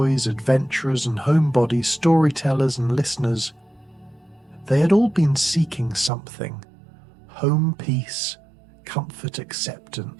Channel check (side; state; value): left; drops out; at 6.1 s